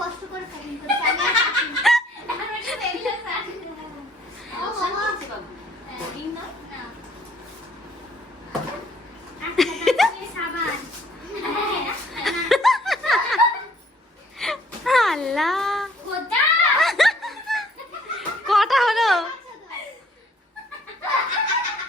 করে প্যাকিং করছি আমি আর পারছি না। এখন একটু দেরি হচ্ছে ও বাবা রিং না না আচ্ছা এই সাবান আল্লাহ, গোদা কটা হলো?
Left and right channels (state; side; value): normal; both; correlation 0.60